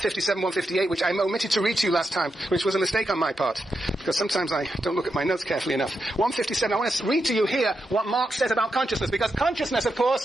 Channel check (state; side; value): normal; both; correlation 0.86